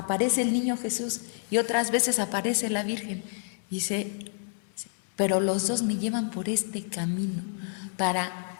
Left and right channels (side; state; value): right; silent; 59 dB below the other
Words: el niño Jesús y otras veces aparece la Virgen. Dice, pero los dos me llevan por este camino para